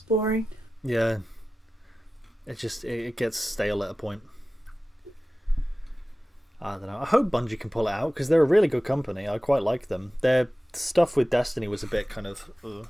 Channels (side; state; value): both; normal; correlation 0.95